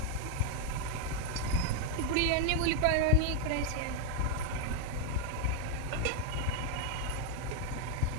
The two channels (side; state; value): both; different; correlation 0.01